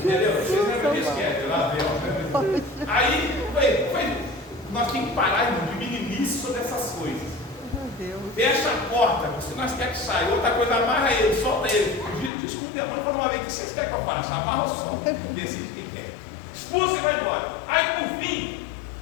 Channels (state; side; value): drops out; right; at 12.3 s